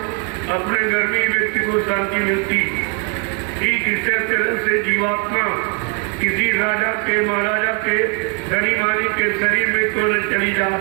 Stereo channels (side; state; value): left; quieter; 34.5 dB